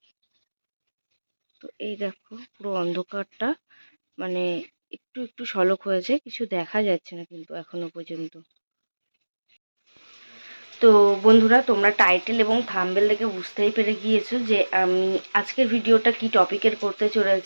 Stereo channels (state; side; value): inverted; both; correlation -1.00